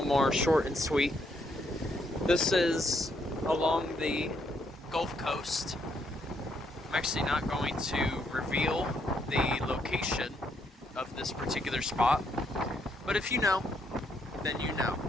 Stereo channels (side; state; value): both; normal; correlation 0.74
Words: more short and sweet. This is along the Gulf Coast. I'm actually not going to reveal the location of this particular spot, but if you know, then you know.